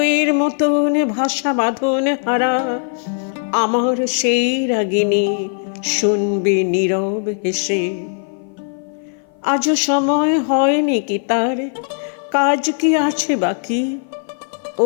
মতন ভাষা বাঁধন হারা আমার সেই রাগিনী শুনবে নীরব হেসে। আজও সময় হয়নি কি তার, কাজ কি আছে বাকি?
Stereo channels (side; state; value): right; silent; 55 dB below the other